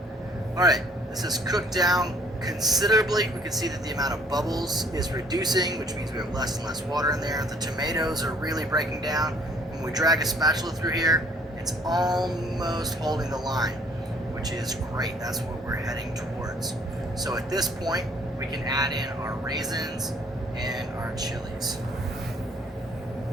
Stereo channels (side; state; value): both; normal; correlation 0.59